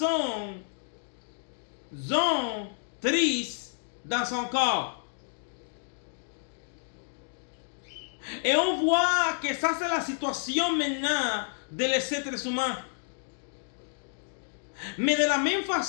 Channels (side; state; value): right; silent; digital silence